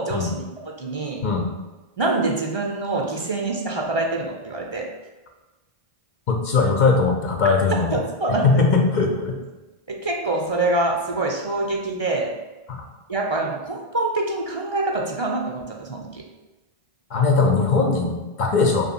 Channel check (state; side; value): late; right; 1.3 ms